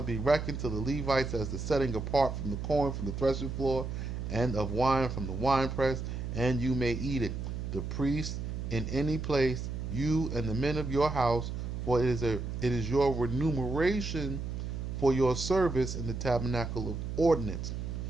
be reckoned to the Levites as the setting apart from the corn from the threshing floor, and of wine from the winepress, and you may eat it. The priest in any place, you and the men of your house, for it is your remuneration for your service in the tabernacle of ordinance.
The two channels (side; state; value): right; noise; hum, 5 dB below the sound